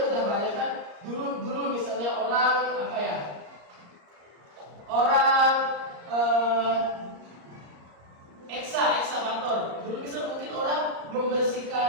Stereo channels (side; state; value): left; late; 34 ms